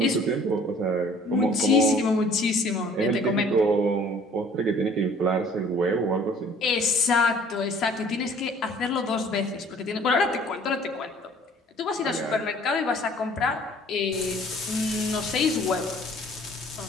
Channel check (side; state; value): both; normal; correlation 0.54